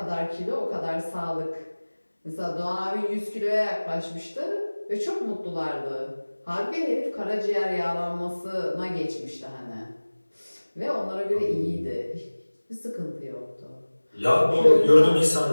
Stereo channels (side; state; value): both; inverted; correlation -1.00